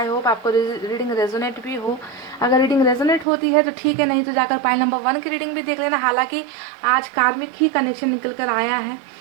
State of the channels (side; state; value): left; drops out; at 3.2 s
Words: hope आपको रीडिंग रेजोनेट भी हो। अगर रीडिंग रेजोनेट होती है तो ठीक है, नहीं तो जाकर पाइल नंबर 1 की रीडिंग भी देख लेना। हालांकि आज कार्मिक ही कनेक्शन निकल कर आया है,